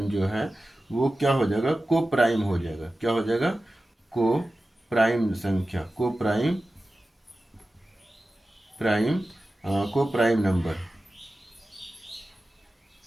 जो है वो क्या हो जाएगा, को प्राइम हो जाएगा, क्या हो जाएगा, को प्राइम संख्या, को प्राइम नंबर,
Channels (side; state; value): both; normal; correlation 0.95